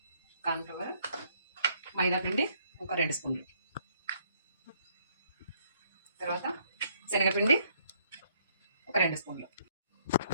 కార్న్ఫ్లవర్, మైదా పిండి ఒక 2 స్పూన్లు, తర్వాత శనగపిండి ఒక 2 స్పూన్లు,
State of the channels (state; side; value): inverted; both; correlation -0.67